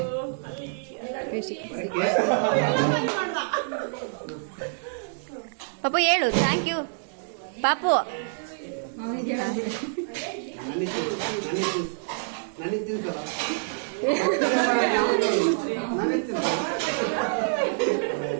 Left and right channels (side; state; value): left; silent; digital silence